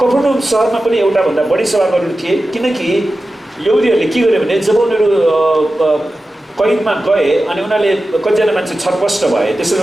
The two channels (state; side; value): normal; both; correlation 0.94